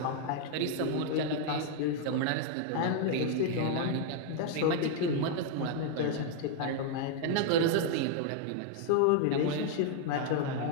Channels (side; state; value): both; different; correlation 0.00